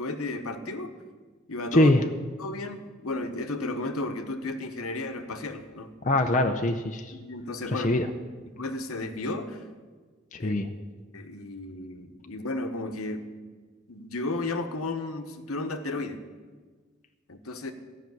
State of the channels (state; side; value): normal; both; correlation 0.46